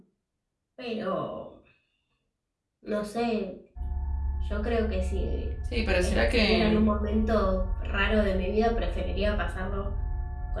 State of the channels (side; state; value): both; identical; correlation 1.00